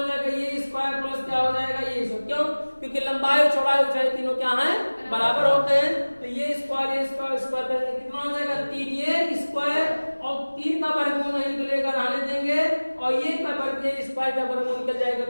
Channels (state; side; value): inverted; both; correlation -1.00